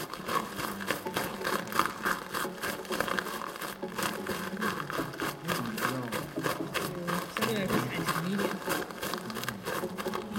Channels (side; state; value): both; identical; correlation 1.00